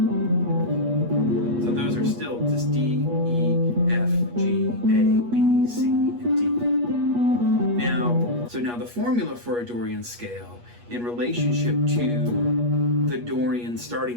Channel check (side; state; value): left; late; 8.4 ms